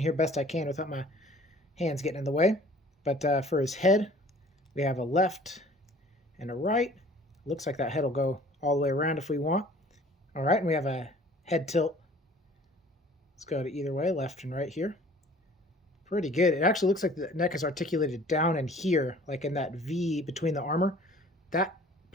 best I can without my hands getting in the way. But for his head, we have a left and a right. Looks like that head will go all the way around if we want. Alright, and we have a head tilt. Let's go to either way, left and right here. Pretty good. It actually looks like the neck is articulated down in here, like in that V between the armor. That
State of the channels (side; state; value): both; normal; correlation 0.51